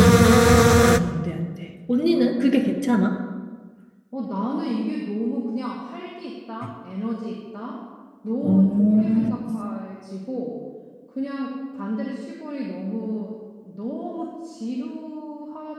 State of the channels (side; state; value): both; identical; correlation 1.00